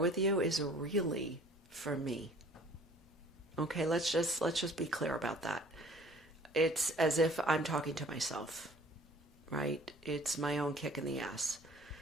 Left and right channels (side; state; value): both; normal; correlation 0.52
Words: you, is really for me. Okay, let's just be clear about that. It's as if I'm talking to myself, right? It's my own kick in the ass.